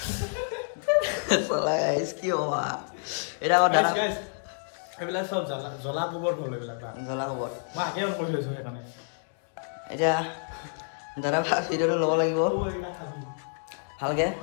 চলা গাইছ কি হ'বা এটা দাদা এইবিলাক সব জ্বলা গোবৰ হ'ল এইবিলাক জ্বলা গোবৰ মই আগে অন কৰি থৈছো সেইকাৰণে এতিয়া দাদা ভিডিওটো ল'ব লাগিব ভালকে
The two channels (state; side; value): silent; right; digital silence